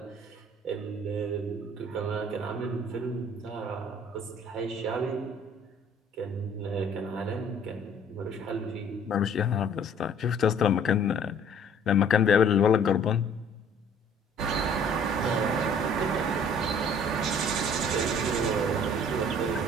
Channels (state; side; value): normal; both; correlation 0.54